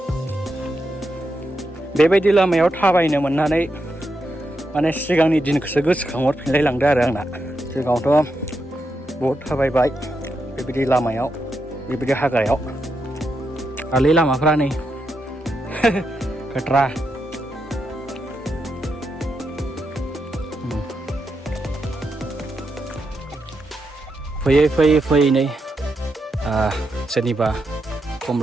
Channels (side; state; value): both; normal; correlation 0.84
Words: बेबायदि लामायाव थाबायनो मोननानै माने सिगांनि दिनखौसो गोसोखांहरफिनलाय लांदों आरो आंना। सिगाङावथ' बहुद थाबायबाय बेबायदि लामायाव, बेबायदि हाग्रायाव। आलै लामाफ्रा नै खोथ्रा। फैयै नै सोरनिबा